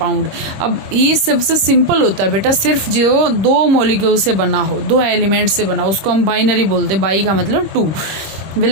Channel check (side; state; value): left; late; 26 ms